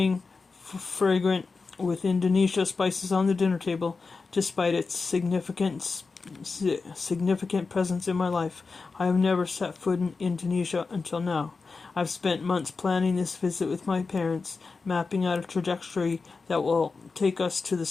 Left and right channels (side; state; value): right; quieter; 4.3 dB